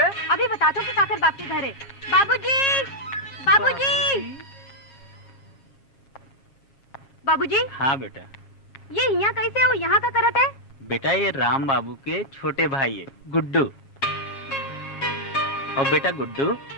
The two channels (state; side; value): late; right; 7.4 ms